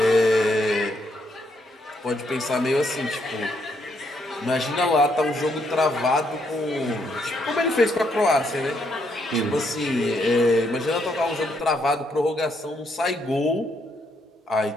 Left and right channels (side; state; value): both; normal; correlation 0.74